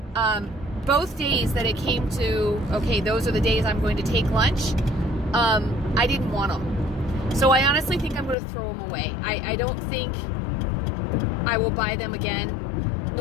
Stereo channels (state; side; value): drops out; right; at 8.3 s